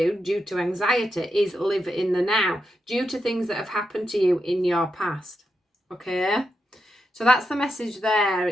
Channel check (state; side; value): normal; both; correlation 0.86